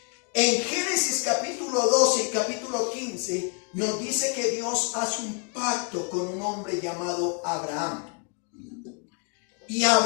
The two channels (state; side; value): quieter; right; 33.7 dB